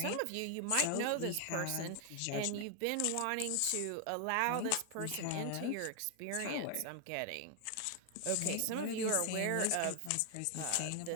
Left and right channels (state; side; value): different; both; correlation 0.00